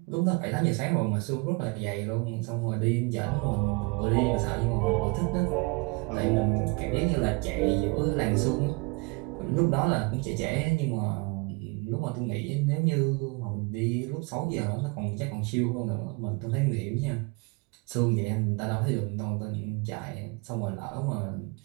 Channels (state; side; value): quieter; left; 28.9 dB